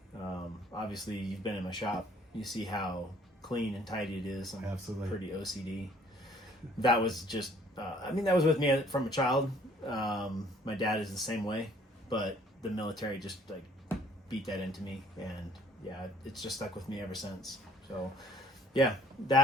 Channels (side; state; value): both; normal; correlation 0.58